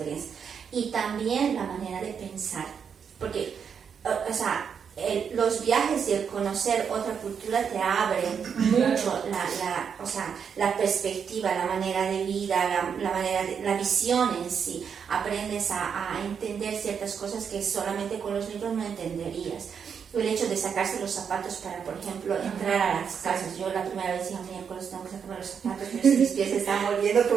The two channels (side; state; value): left; quieter; 7.0 dB